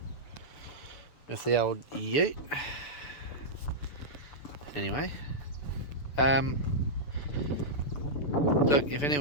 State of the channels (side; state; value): right; late; 6.9 ms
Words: with the old ute. Anyway, look, if